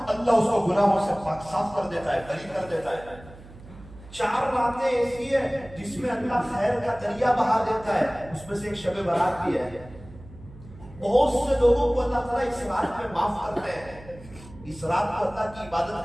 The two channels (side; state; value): right; noise; hum, 19 dB below the sound